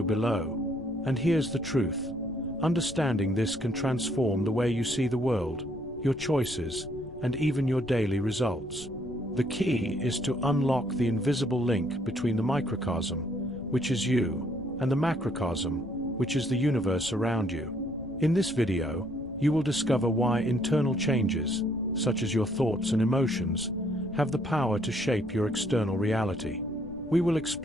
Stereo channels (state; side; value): noise; left; rumble, 17 dB below the sound